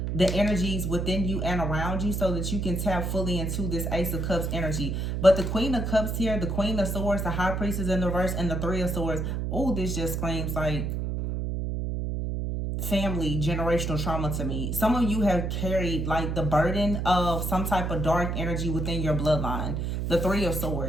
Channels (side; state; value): right; noise; hum, 1 dB below the sound